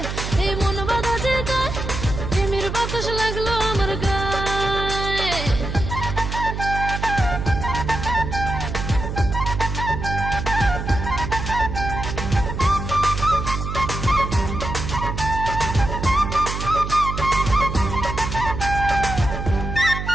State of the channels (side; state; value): right; noise; hum, 5 dB below the sound